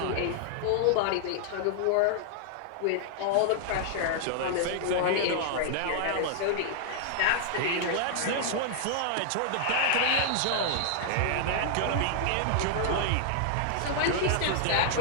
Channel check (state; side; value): different; both; correlation -0.01